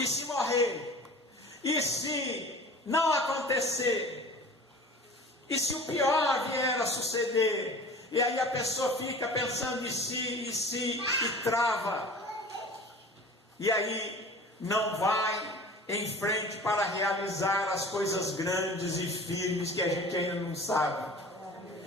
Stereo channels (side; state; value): both; normal; correlation 0.41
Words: se morrer? E se não acontecer? E se o pior vier a suceder? E aí a pessoa fica pensando e trava. E aí não vai em frente para realizar as coisas grandes e firmes que a gente ainda não sabe.